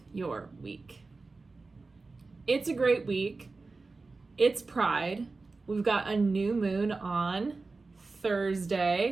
your week. It's a great week. It's Pride. We've got a new moon on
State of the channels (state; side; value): quieter; left; 3.8 dB